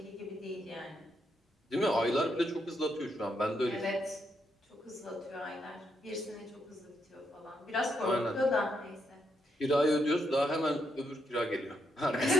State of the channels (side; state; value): both; normal; correlation 0.79